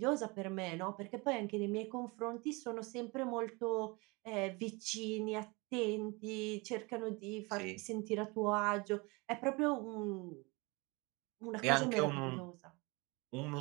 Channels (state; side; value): quieter; left; 26.5 dB